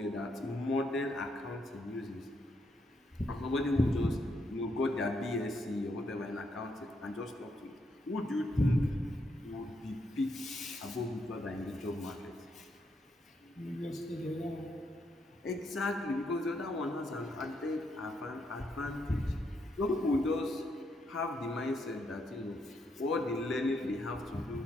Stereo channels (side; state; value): both; normal; correlation 0.77